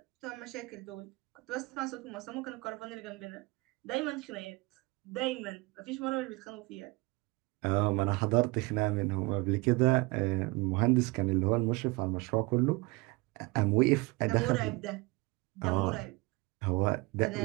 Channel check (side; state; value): left; quieter; 24.4 dB